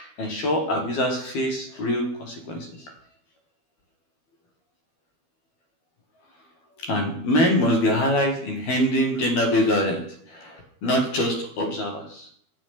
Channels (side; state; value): right; late; 12 ms